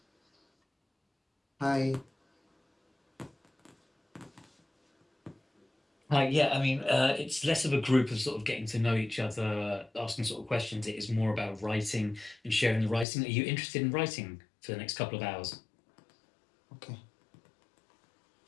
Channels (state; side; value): drops out; right; at 13.1 s